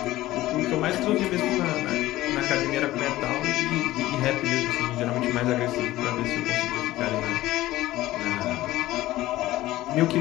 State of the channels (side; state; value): right; quieter; 16.3 dB